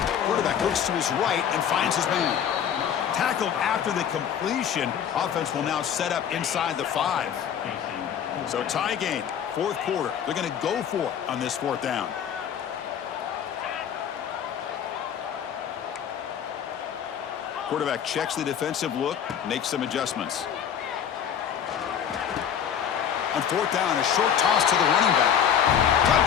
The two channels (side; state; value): right; quieter; 8.7 dB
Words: Quarterback looks to his right and finds his man. Tackled after the completion. Offense will now set up inside the 5. So tie game, fourth quarter. They're going to go for it on this fourth down. Quarterback checks the defensive look, makes some adjustments. On fourth down, a short toss to the running back.